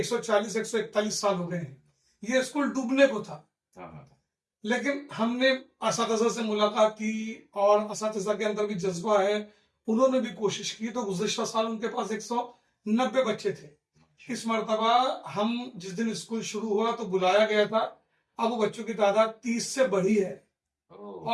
سال ہو گئے ہیں۔ یہ اسکول ڈوبنے کو تھا، لیکن ہم نے اساتذہ سے ملاقات کی، اور اساتذہ کے اندر بھی جذبہ ہے، انہوں نے بھی کوشش کی، تو گزشتہ سال ان کے پاس 190 بچے تھے۔ اس مرتبہ ہم جس دن اسکول شروع ہوا تو بلایا گیا تھا، اب وہ بچوں کی تعداد 30 سے بڑھی ہے،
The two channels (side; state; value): both; identical; correlation 1.00